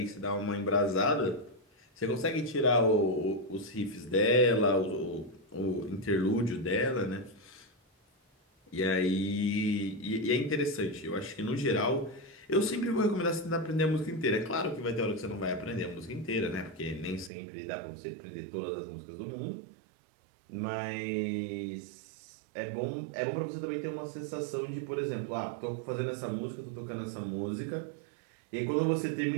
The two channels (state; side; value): drops out; left; at 17.3 s